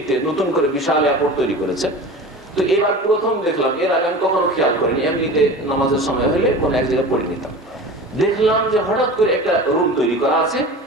নতুন করে বিশাল এয়ারপোর্ট তৈরি করেছে, তো এবার প্রথম দেখলাম, এর আগে আমি কখনো খেয়াল করিনি, এমনিতে নামাজের সময় হলে কোনো এক জায়গায় পড়ে নিতাম। দেখলাম যে হঠাৎ করে একটা রুম তৈরি করা আছে,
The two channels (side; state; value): both; normal; correlation 0.35